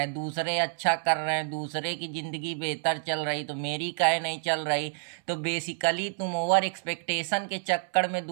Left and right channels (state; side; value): silent; left; 59 dB below the other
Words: दूसरे अच्छा कर रहे हैं, दूसरे की ज़िंदगी बेहतर चल रही तो मेरी काहे नहीं चल रही। तो बेसिकली तुम ओवर एक्सपेक्टेशन के चक्कर में